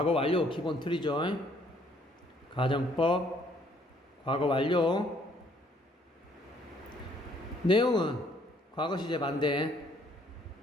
완료 기본 틀이죠. 가정법 과거 완료 내용은 과거 시제 반대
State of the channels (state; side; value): normal; both; correlation 0.64